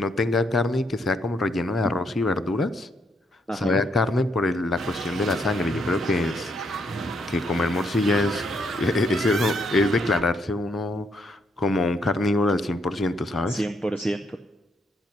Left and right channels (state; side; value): normal; both; correlation 0.74